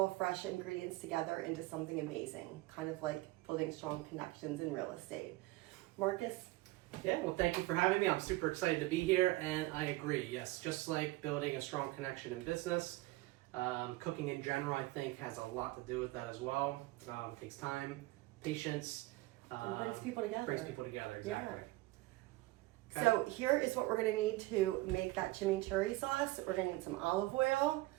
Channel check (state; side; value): quieter; left; 19.5 dB